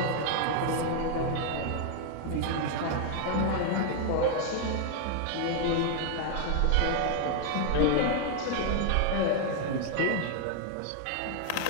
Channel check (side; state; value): both; different; correlation 0.00